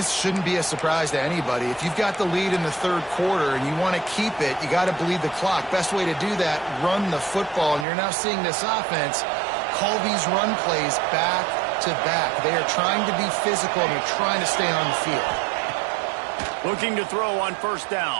shouldn't be a surprise to anybody. If you've got the lead in the third quarter and you want to keep it, you got to bleed the clock. Best way to do that, run the football. And you're now seeing this offense call these run plays back to back. They are trying to be physical, and they're trying to stay on the field. Looking to throw on first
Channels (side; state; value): left; drops out; at 7.9 s